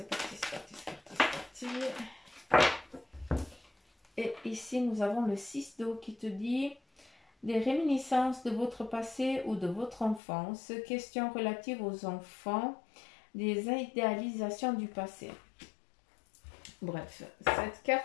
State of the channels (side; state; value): right; drops out; at 10.2 s